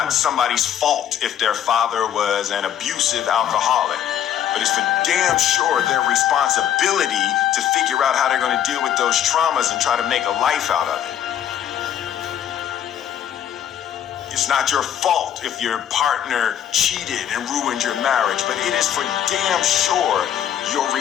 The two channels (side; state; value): right; quieter; 10.2 dB